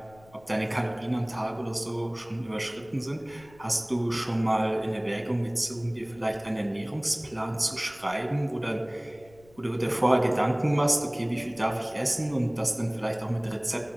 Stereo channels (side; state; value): left; noise; rumble, 26 dB below the sound